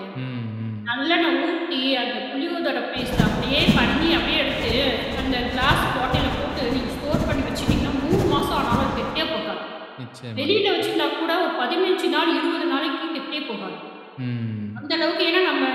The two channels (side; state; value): both; identical; correlation 1.00